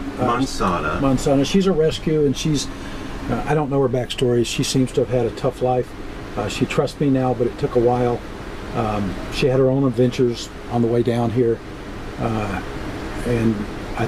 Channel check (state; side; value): identical; both; correlation 1.00